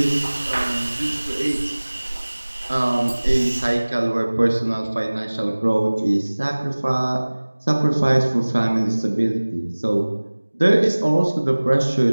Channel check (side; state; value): both; inverted; correlation -1.00